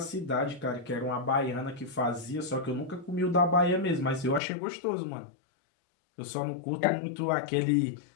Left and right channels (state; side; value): drops out; right; at 4.4 s